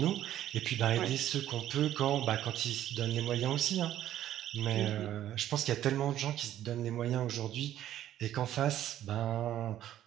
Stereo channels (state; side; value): quieter; left; 12.2 dB